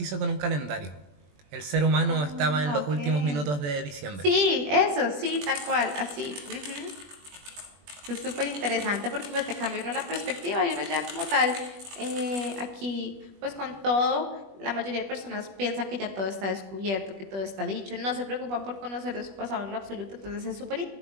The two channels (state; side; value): late; left; 21 ms